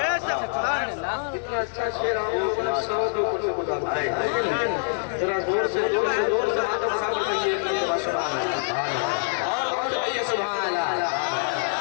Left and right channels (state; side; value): silent; right; digital silence